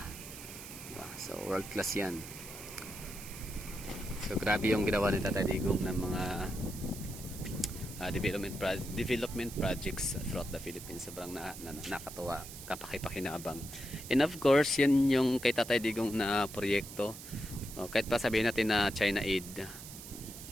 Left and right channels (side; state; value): right; noise; hiss, 13 dB below the sound